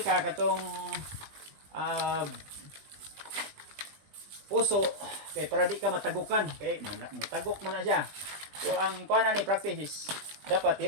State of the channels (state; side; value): late; left; 20 ms